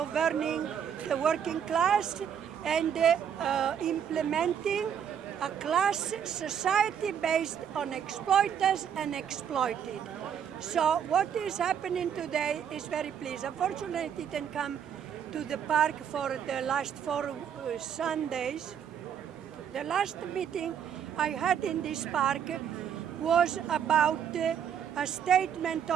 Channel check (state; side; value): quieter; left; 8.4 dB